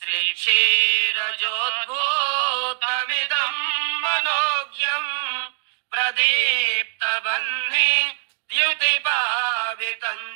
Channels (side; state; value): left; silent; digital silence